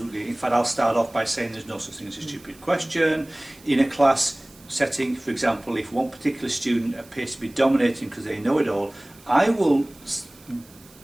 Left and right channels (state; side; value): noise; right; hiss, 25 dB below the sound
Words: In fact, I'll start off by saying there's no such thing as a stupid question. In a class setting, for example, if one particular student appears to be dominating because they know it all, I will